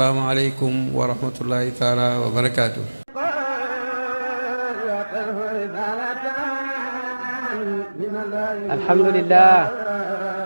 aleykum wa rahmatullahi taala wa barakaatu.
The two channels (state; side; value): inverted; both; correlation -1.00